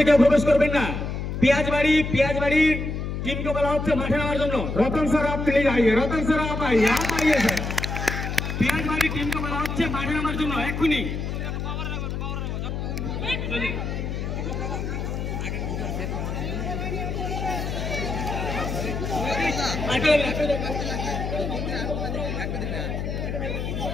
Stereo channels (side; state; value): left; noise; hum, 3 dB below the sound